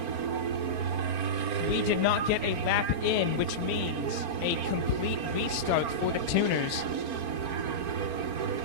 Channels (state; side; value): late; left; 4.4 ms